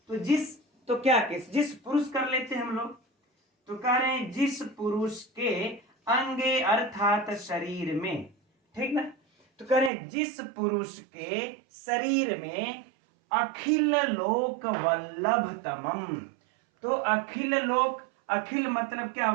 तो जिस, तो क्या किस, जिस पुरुष कर लेते हैं हम लोग, तो कह रहे हैं जिस पुरुष के अंगे अर्थात शरीर में, ठीक ना। तो कह रहे हैं जिस पुरुष के शरीर में अखिल लोक वल्लभतमम। तो अखिल लोक, अखिल मतलब क्या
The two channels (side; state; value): left; drops out; at 9.9 s